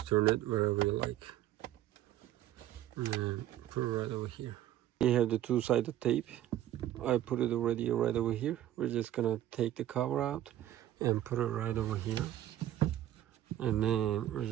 turn it wherever you like and put it right over here. We have the two-sided tape. I put it already right over here. We're just gonna take the cover out and put it right over here, and then we're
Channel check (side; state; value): left; quieter; 12.8 dB